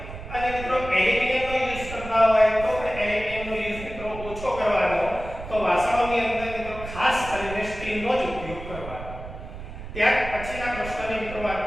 અને મિત્રો એલ્યુમિનિયમનો યુઝ કરતા હોય તો પણ એલ્યુમિનિયમનો યુઝ મિત્રો ઓછો કરવાનો, તો વાસણોની અંદર મિત્રો ખાસ કરીને સ્ટીલનો જ ઉપયોગ કરવાનો. ત્યાર પછીના પ્રશ્નની મિત્રો વાત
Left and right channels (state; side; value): noise; right; rumble, 11 dB below the sound